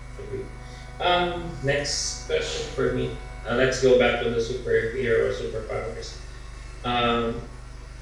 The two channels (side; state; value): both; identical; correlation 1.00